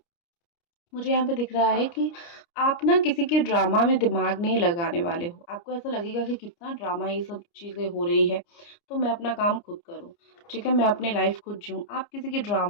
मुझे यहाँ पे दिख रहा है कि आप ना किसी के ड्रामा में दिमाग नहीं लगाने वाले हो। आपको ऐसा लगेगा कि कितना ड्रामा ये सब चीज़ें हो रही है, तो मैं अपना काम खुद करूँ, ठीक है, मैं अपनी लाइफ खुद जीऊँ। आप किसी की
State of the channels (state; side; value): late; right; 29 ms